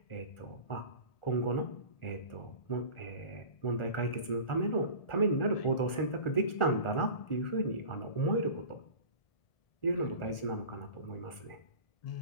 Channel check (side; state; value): right; late; 1.4 ms